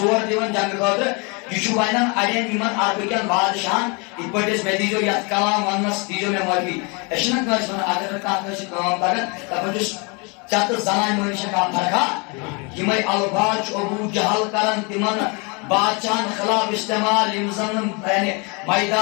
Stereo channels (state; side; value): quieter; right; 31.3 dB